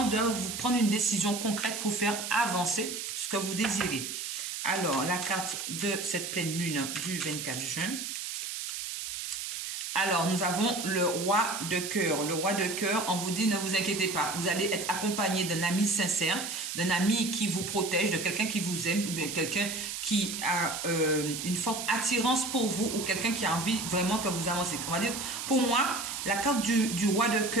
de vous prendre une décision concrète pour faire avancer ce que vous désirez. Alors, la carte de cette pleine lune du 24 juin. Alors, nous avons le roi de cœur. Le roi de cœur, on vous dit, ne vous inquiétez pas. Vous allez être accompagné d'un ami sincère, d'un ami qui vous protège, de quelqu'un qui vous aime, ou bien quelqu'un qui a une forte attirance pour vous, ou quelqu'un qui a envie vraiment que vous avancez. On va dire, pour moi, la carte du roi de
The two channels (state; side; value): noise; right; hiss, 5 dB below the sound